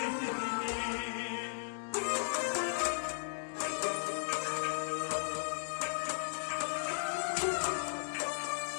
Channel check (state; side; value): silent; right; digital silence